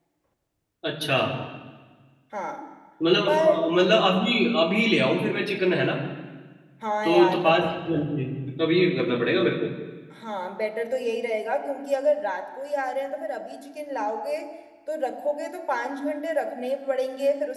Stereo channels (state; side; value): identical; both; correlation 1.00